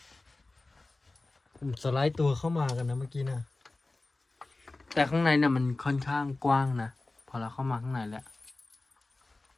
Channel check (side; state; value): right; quieter; 3.1 dB